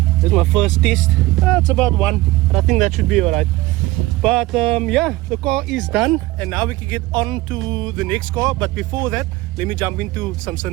This is my first test. It's about 1, but I think that should be alright. But yeah, the car is done, and now we can get on to the next car. But before that, let me jump into some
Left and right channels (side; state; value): left; quieter; 19.0 dB